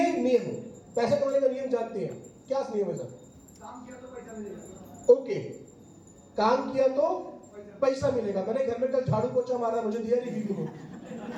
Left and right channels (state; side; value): identical; both; correlation 1.00